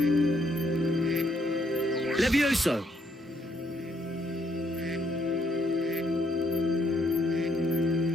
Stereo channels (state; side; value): normal; both; correlation 0.72